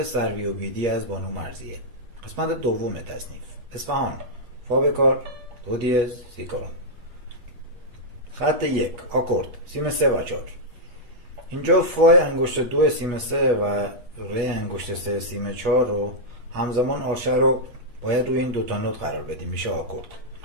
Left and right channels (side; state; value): left; late; 8.2 ms